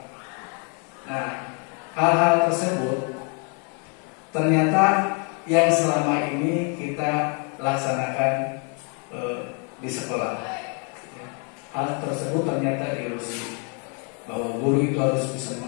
Nah, hal-hal tersebut ternyata yang selama ini kita laksanakan di sekolah. Hal tersebut ternyata ilusi bahwa guru itu harus bisa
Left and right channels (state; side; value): quieter; right; 38.3 dB